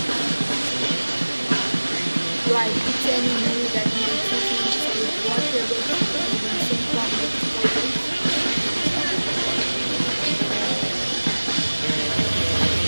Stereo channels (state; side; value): inverted; both; correlation -1.00